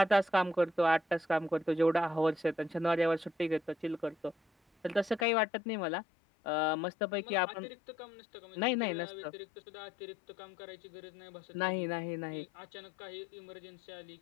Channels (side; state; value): right; drops out; at 5.2 s